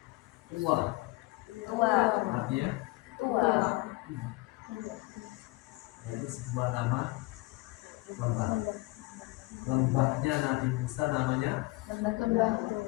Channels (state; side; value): quieter; right; 21.9 dB